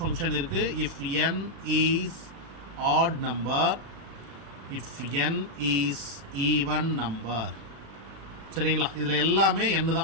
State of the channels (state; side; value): late; left; 36 ms